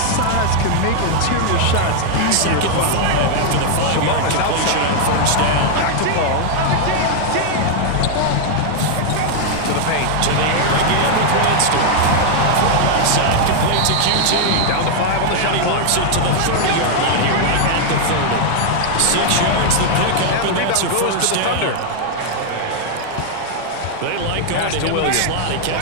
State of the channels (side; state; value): both; different; correlation 0.00